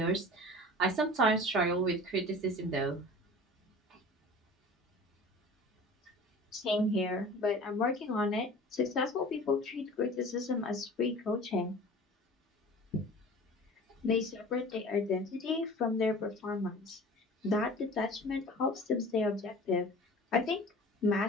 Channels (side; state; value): both; normal; correlation 0.41